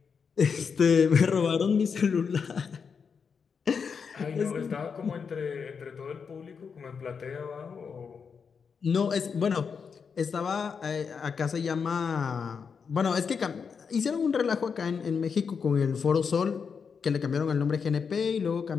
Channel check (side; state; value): right; quieter; 6.0 dB